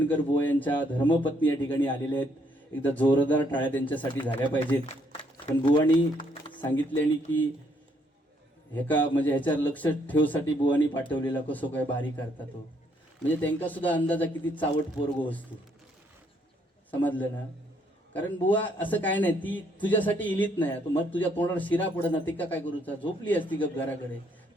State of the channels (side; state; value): both; normal; correlation 0.70